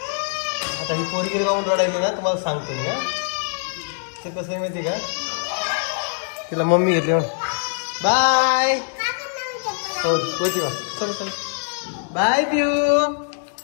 आता ही पोरगी गाऊन रडायली ना तुम्हाला सांगतो मी. ते कसं आहे माहिती का, तिला मम्मी घेतली म्हणून. बाय हो वरती वा. चल चल बाय पिऊ.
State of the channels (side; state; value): right; silent; 64 dB below the other